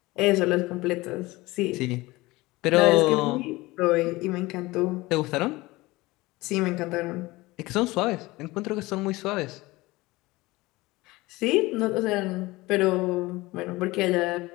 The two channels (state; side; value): quieter; right; 20.7 dB